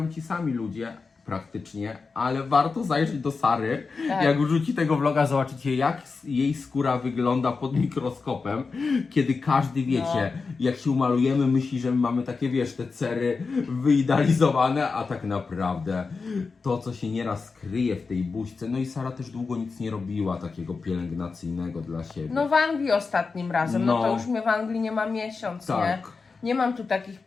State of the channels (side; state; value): right; quieter; 4.6 dB